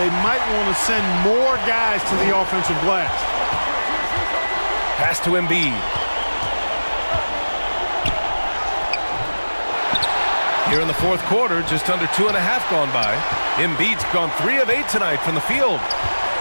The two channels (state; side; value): inverted; both; correlation -1.00